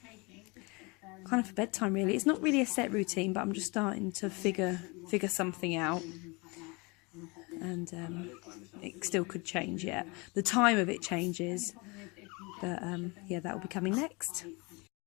of for bedtime really. It's not really a set routine, but I'm just starting to figure something out. And it still could change yet. The time of it changes. But yeah, that will be coming next.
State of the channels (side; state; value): right; quieter; 27.8 dB